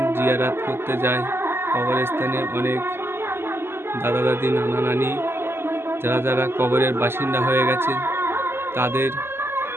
জিয়ারাত করতে যাই। কবরস্থানে অনেক দাদা দাদি, নানা নানি যারা কবরের বাসিন্দা হয়ে গেছেন তাদের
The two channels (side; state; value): left; late; 0.12 ms